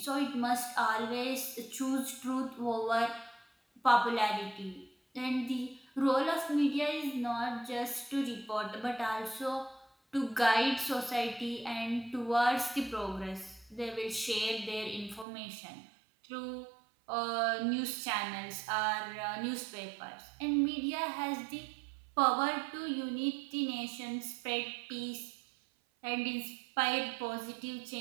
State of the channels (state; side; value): drops out; left; at 15.2 s